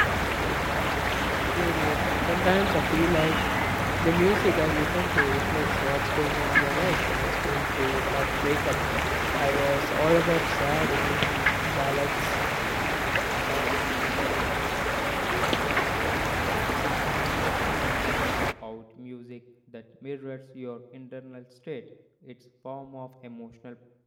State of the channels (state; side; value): identical; both; correlation 1.00